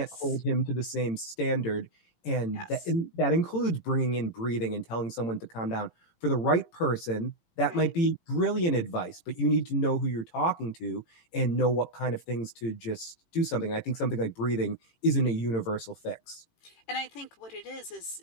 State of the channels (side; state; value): right; late; 18 ms